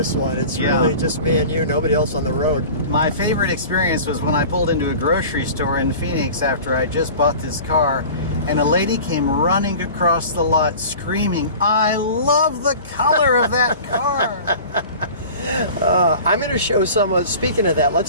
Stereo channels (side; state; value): both; inverted; correlation -0.39